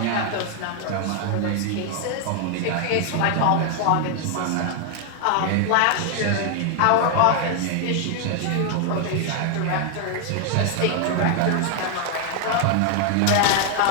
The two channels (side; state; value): both; different; correlation 0.00